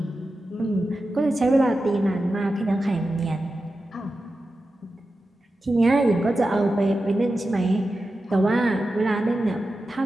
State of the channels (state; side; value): normal; both; correlation 0.92